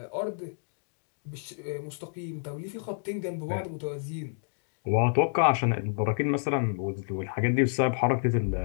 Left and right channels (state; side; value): silent; right; digital silence